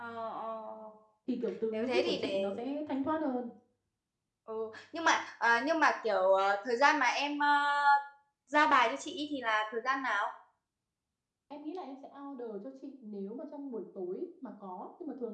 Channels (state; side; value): identical; both; correlation 1.00